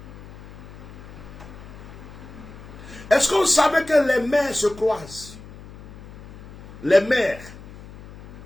Est-ce que vous savez que les mers se croisent? Les mers.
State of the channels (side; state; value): left; noise; hum, 16 dB below the sound